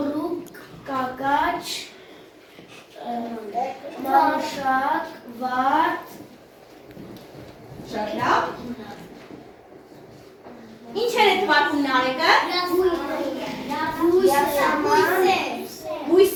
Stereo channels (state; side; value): identical; both; correlation 1.00